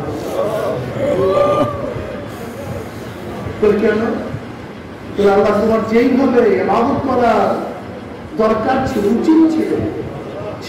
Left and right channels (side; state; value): both; identical; correlation 1.00